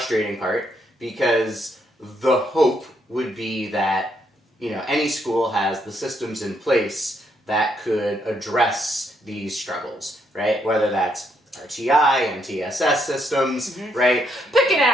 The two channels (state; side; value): normal; both; correlation 0.75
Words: part, because the hope would be that, you know, any school has the systems in place that could address these struggles, right? Whether that's RTI and TSS systems, right? Pick an